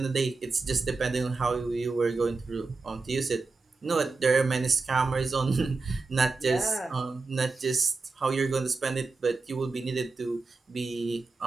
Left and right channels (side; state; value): left; quieter; 4.0 dB